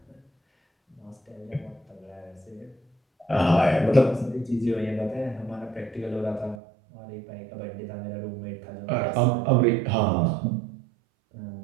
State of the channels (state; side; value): drops out; left; at 6.6 s